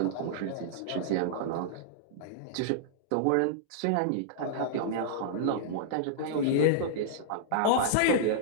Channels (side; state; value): both; different; correlation -0.02